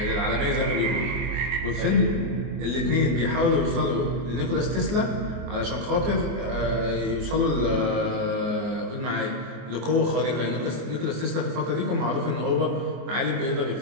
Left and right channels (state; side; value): late; left; 24 ms